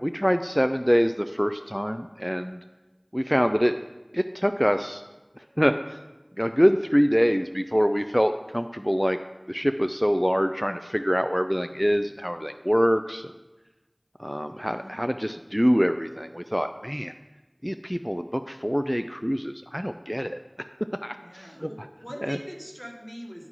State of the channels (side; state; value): both; identical; correlation 1.00